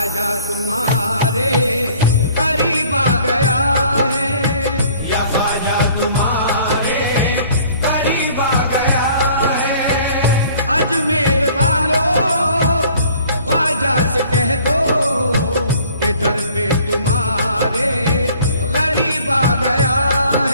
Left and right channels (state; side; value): inverted; both; correlation -0.54